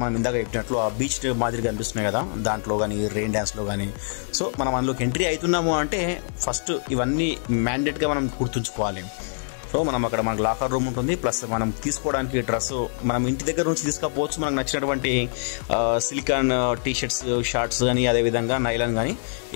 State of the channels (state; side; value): silent; right; 62 dB below the other